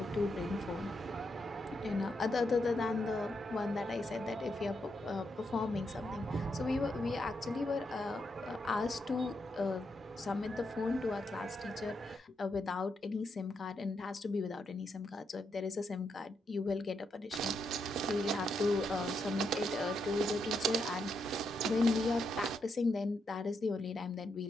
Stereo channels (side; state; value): both; normal; correlation 0.81